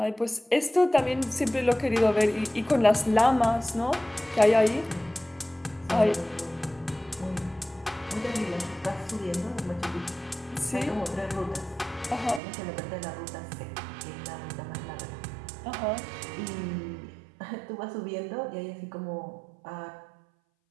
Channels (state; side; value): drops out; left; at 12.4 s